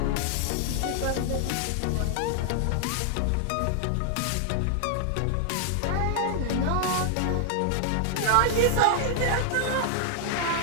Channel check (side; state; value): both; different; correlation 0.00